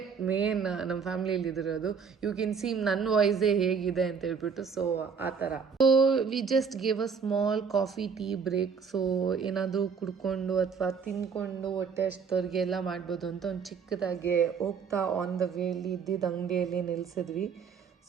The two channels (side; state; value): left; quieter; 6.1 dB